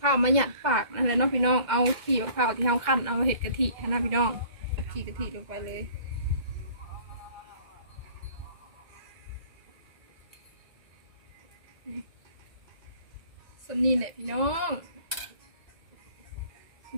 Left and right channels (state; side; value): late; left; 2.1 ms